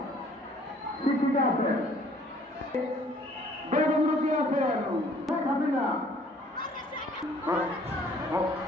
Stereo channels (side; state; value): both; normal; correlation 0.57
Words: শিক্ষিকা আছেন, বেগমরুকি আছেন, শেখ হাসিনা,